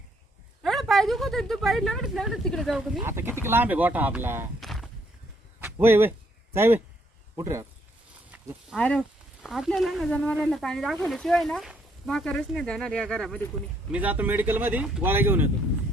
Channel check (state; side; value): normal; both; correlation 0.70